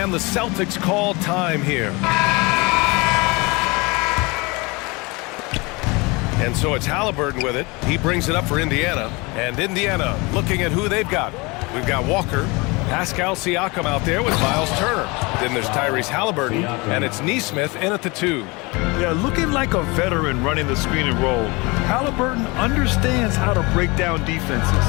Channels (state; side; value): quieter; right; 26.1 dB